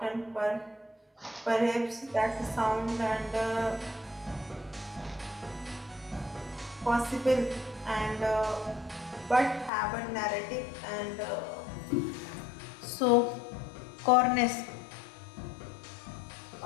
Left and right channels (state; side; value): drops out; right; at 9.7 s